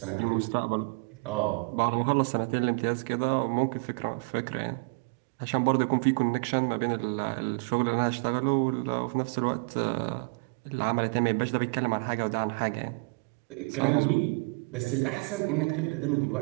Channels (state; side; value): quieter; left; 33.1 dB